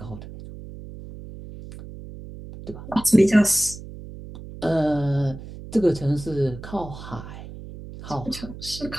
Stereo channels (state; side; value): noise; right; hum, 13 dB below the sound